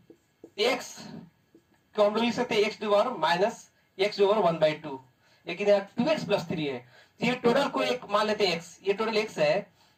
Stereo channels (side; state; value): both; identical; correlation 1.00